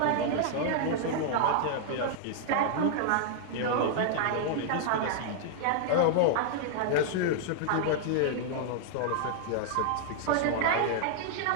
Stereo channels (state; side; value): different; both; correlation -0.01